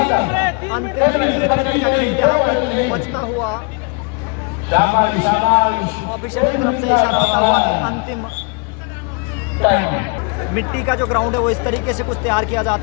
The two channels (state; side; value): quieter; right; 34.0 dB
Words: बचता हुआ ऑफिशियल की तरफ से इशारा होता हुआ कि अंतिम मिट्टी का जो ग्राउंड है वो इस तरीके से कुछ तैयार किया